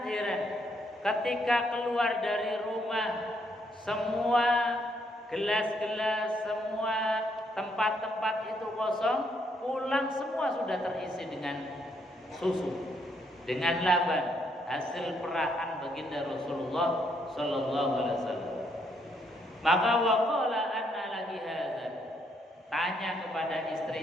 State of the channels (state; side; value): normal; both; correlation 0.73